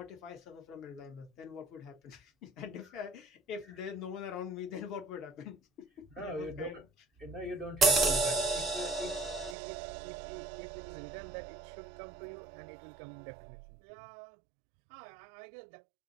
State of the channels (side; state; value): left; drops out; at 9.6 s